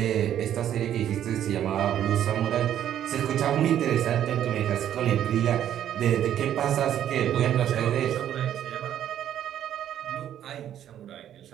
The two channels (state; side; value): quieter; left; 10.8 dB